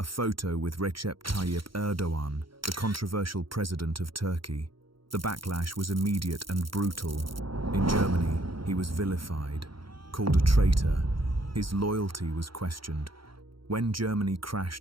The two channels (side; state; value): left; late; 0.74 ms